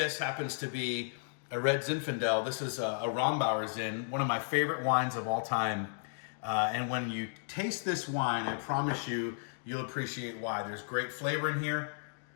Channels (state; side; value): silent; right; digital silence